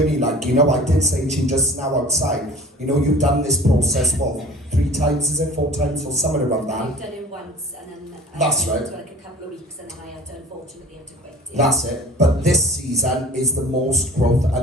Like, you know, I did say to you just now outside, you know, you've done this process, what, 3 times, is it? 4 times, or somewhere around that? I've done it once, and then That's I right. went to like a couple of weeks, and then I had to unfortunately have to quit. That's it. But this season is the most growth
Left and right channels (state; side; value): normal; both; correlation 0.45